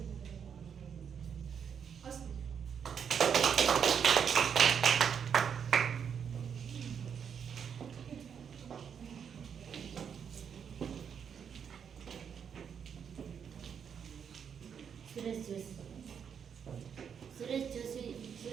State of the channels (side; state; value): left; quieter; 7.5 dB